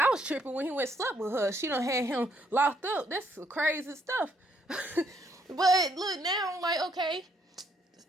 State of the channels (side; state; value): both; normal; correlation 0.70